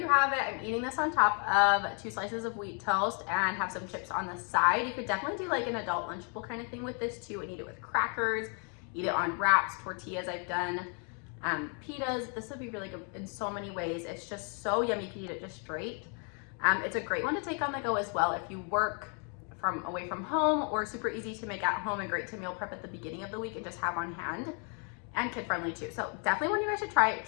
have it. I'm eating this on top of 2 slices of wheat toast and have some chips on the side. You could definitely do like an adult lunchable kind of thing with this too, and eat it with crackers, eat it on wraps, tortillas I've done. Pitas, this would be really good in so many ways. It's just so yummy. You can eat it just straight. It's a great one to take on the go as well if you work away from home, or super easy to make at home and great to meal prep at the beginning of the week and just have on hand, and kid friendly too. So definitely want you guys to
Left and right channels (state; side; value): quieter; right; 39.2 dB